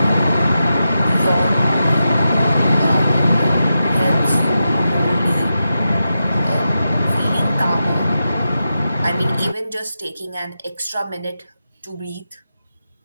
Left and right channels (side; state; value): both; inverted; correlation -0.89